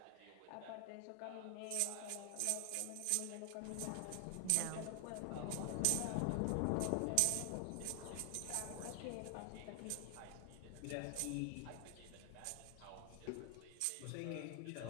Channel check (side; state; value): both; different; correlation 0.00